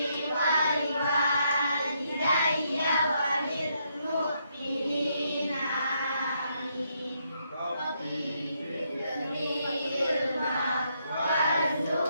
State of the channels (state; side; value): inverted; both; correlation -0.76